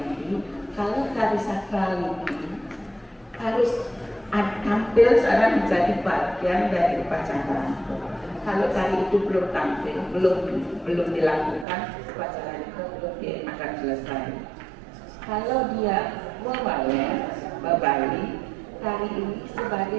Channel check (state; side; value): drops out; left; at 11.7 s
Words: ini. Kalau tari sakral ini harus tampil secara menjadi bagian dari upacara. Kalau tari itu belum tampil, belum dilakukan, upacara itu belum akan selesai. Kalau dia Bali, tari ini sebagai